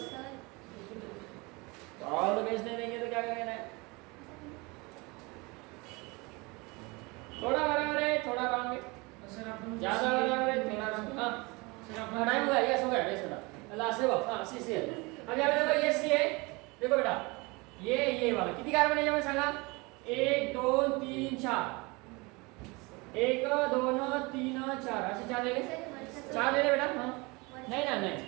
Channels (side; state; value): left; quieter; 26.0 dB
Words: ऑल द बेस्ट नहीं देंगे तो क्या करेंगे? थोड़ा बराबर है, थोड़ा रॉन्ग है, सर आपण ज्यादा बराबर है, थोड़ा रॉन्ग। हाँ सर आपण टाइम हुआ, यस हो गया, यस बेटा, लास्ट है वो। हाँ सी सी है। अब यहाँ पे देखो ये सी है, देखो बेटा ये वाला कितनी कार्बन है जब सांगा? 1 2 3 4, 1 2 3 4 असे 4 ले ले, 4 ले ले बेटा। हाँ नहीं ना